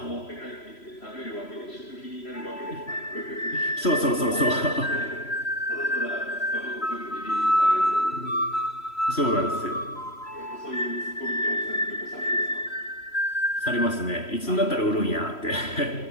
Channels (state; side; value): late; right; 3.1 ms